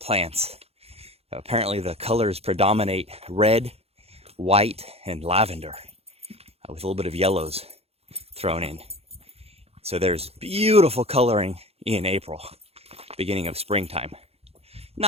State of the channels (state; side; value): late; left; 0.29 ms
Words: Apparently the colors predominate red, white, and lavender, with a little bit of yellows thrown in. So there's beautiful coloring in April, beginning of springtime.